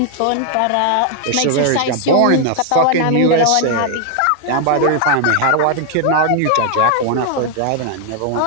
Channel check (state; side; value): different; both; correlation 0.00